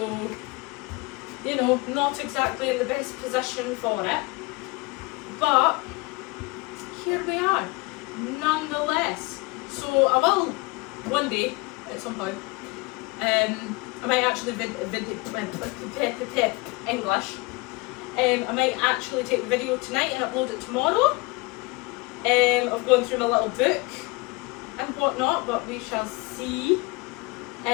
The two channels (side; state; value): right; quieter; 25.6 dB